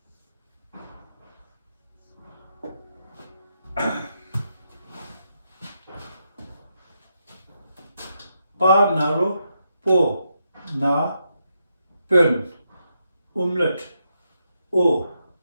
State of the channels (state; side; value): inverted; both; correlation -0.82